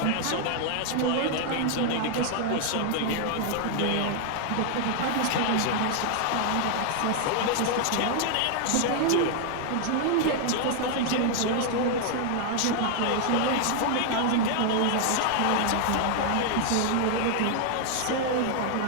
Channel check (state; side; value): different; both; correlation 0.00